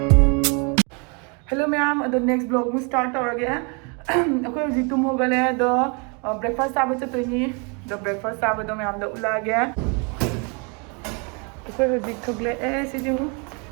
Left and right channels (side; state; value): left; quieter; 33.7 dB